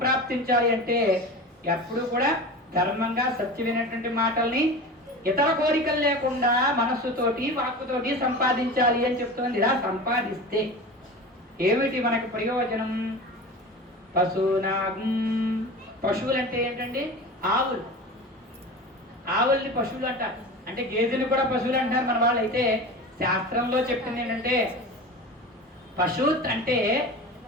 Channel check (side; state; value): both; normal; correlation 0.32